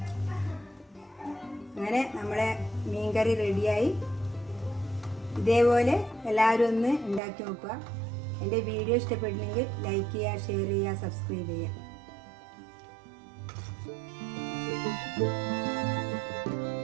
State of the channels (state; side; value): drops out; left; at 7.2 s